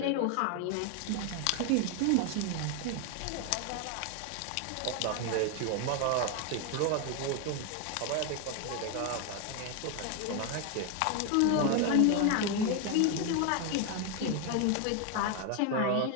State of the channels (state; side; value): different; both; correlation 0.01